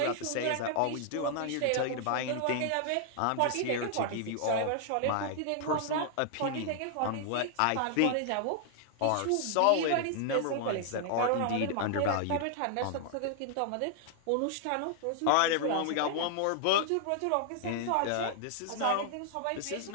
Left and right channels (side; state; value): both; different; correlation 0.00